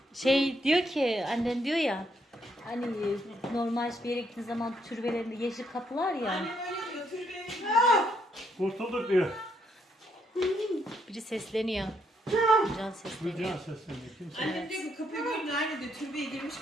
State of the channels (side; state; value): both; normal; correlation 0.74